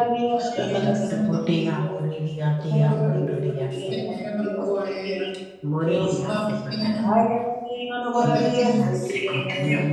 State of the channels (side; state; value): both; identical; correlation 1.00